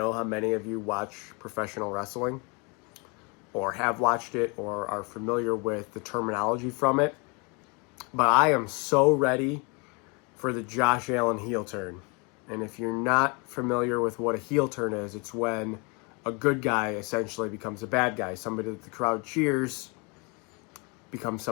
how many of you watch professional wrestling or have watched it or are familiar with the terminology from it. But I am so ready for the Josh Allen heel turn. And if you're not familiar with what a heel turn is, it's when a good guy essentially becomes a bad guy. Somebody that the crowd cheers becomes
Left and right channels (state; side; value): quieter; right; 31.1 dB